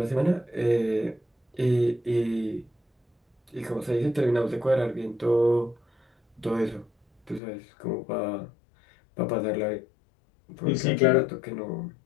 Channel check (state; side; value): drops out; right; at 7.4 s